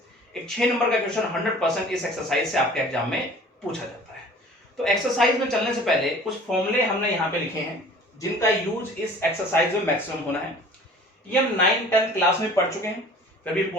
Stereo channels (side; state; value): both; normal; correlation 0.47